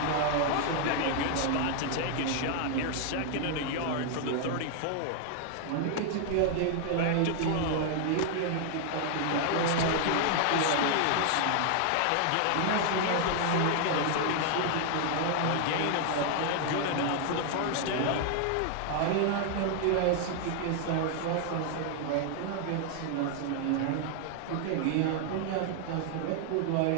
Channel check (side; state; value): both; different; correlation 0.00